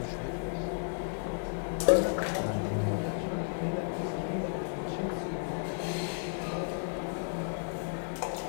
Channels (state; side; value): silent; right; digital silence